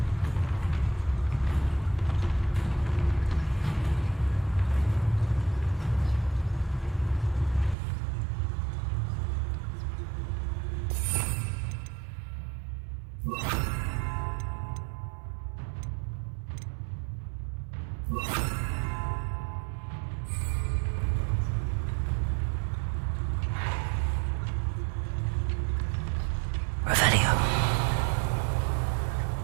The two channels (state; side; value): drops out; left; at 7.8 s